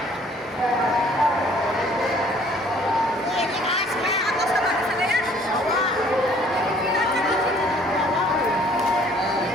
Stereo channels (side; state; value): both; normal; correlation 0.57